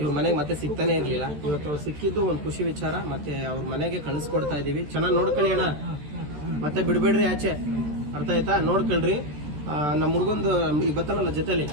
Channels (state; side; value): late; left; 14 ms